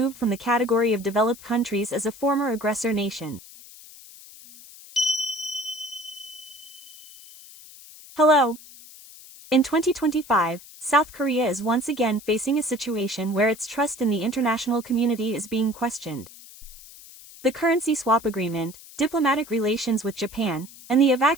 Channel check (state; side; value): noise; left; hiss, 19 dB below the sound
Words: from the category of developed countries as a former aggressor nation. Hello. In 2025, South Korea is once again facing a situation where its trust in the international community is being questioned. The currency swap agreement, diplomatic relations with Japan, and the